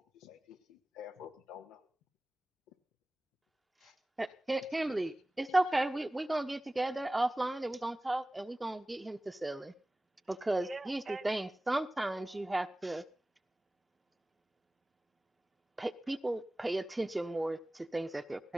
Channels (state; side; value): normal; both; correlation 0.98